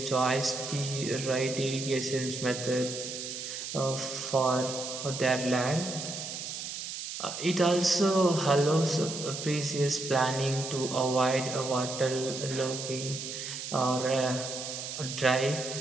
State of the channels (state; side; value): noise; right; hiss, 7 dB below the sound